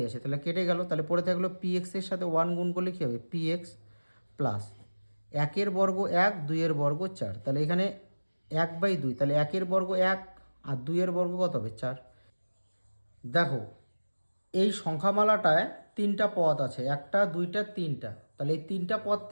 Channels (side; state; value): both; inverted; correlation -1.00